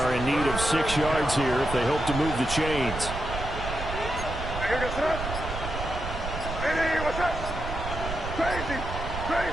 in need of 6 yards here if they hope to move the chains.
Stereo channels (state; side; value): noise; right; rumble, 6 dB below the sound